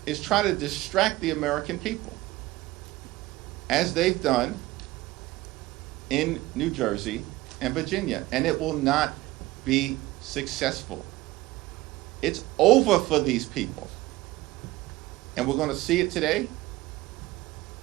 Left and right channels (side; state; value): left; quieter; 18.4 dB